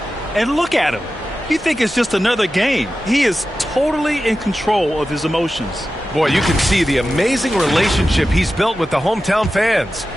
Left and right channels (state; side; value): normal; both; correlation 0.93